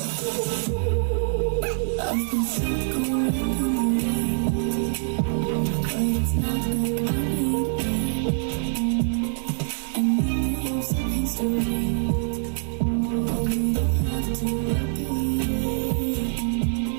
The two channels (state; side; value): silent; left; 61 dB below the other